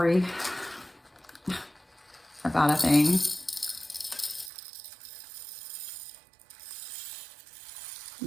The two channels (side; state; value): left; drops out; at 4.5 s